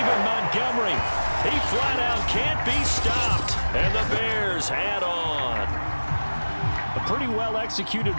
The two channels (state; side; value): inverted; both; correlation -1.00